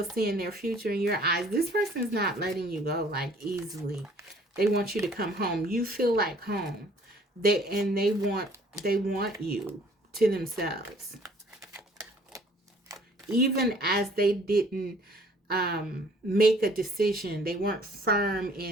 their future in your eyes, this person's not letting you go like easily. They want you to come home. You feel like home. They want you to themselves. Even as they didn't make a decision, they weren't firm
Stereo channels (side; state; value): both; normal; correlation 0.56